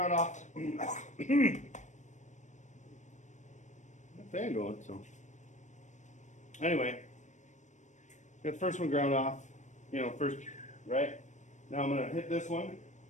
off. Fan going, so. Anyway, got the first one ground off. You know, first, right? Now I'm gonna hit this one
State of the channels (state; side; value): late; right; 0.35 ms